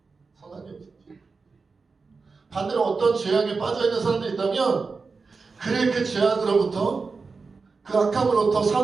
반대로 어떤 죄악에 빠져있는 사람들이 있다면 그래 그 죄악으로부터 그 악함으로부터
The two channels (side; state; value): left; quieter; 4.5 dB